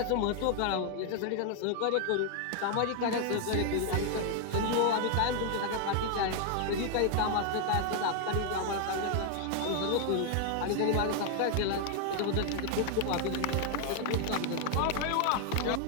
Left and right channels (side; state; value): both; different; correlation 0.00